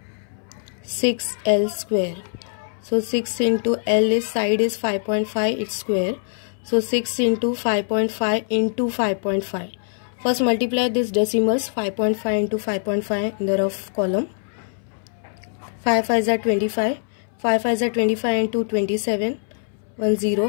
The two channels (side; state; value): right; silent; 64 dB below the other